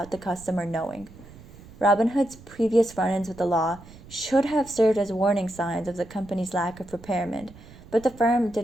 the customer knowing. Robinhood's previous run-ins with the law should have served as warning signs of the company's lack of preparation, but the firm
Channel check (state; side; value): noise; right; rumble, 20 dB below the sound